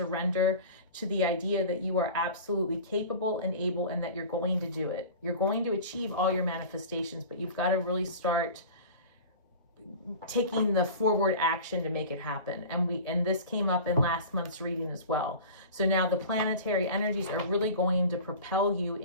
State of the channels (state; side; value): inverted; both; correlation -0.37